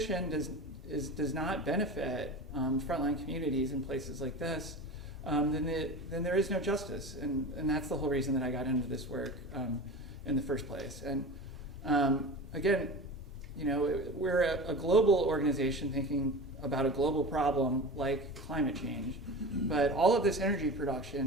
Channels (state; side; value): normal; both; correlation 0.31